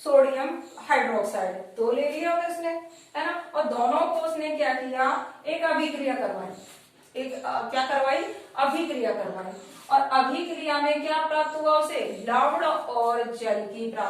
हाइड्रोक्साइड, 2 ले लिया उसने, है ना, और दोनों को उसने क्या किया? एक अभिक्रिया करवाई। क्या करवाई? अभिक्रिया करवाई। और अभिक्रिया में क्या प्राप्त हुआ उसे? लवण और जल की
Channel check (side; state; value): both; identical; correlation 1.00